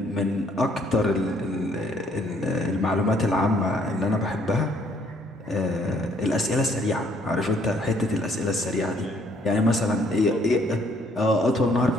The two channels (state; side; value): normal; both; correlation 0.65